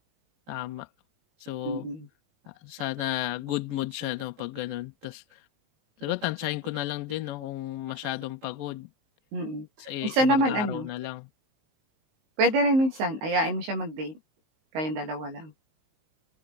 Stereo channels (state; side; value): late; left; 19 ms